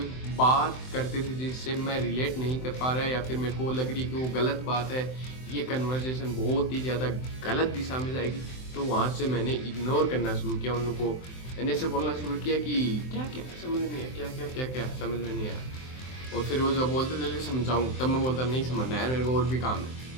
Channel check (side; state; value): right; late; 23 ms